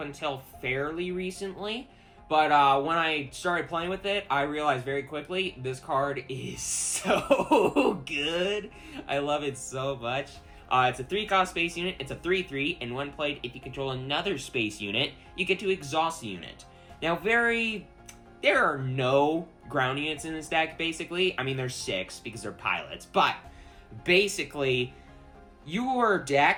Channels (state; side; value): identical; both; correlation 1.00